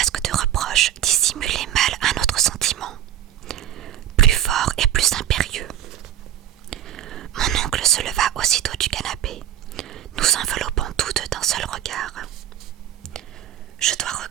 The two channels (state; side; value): quieter; left; 11.5 dB